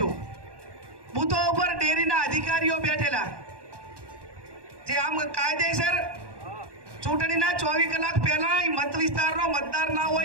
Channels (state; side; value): late; left; 1.1 ms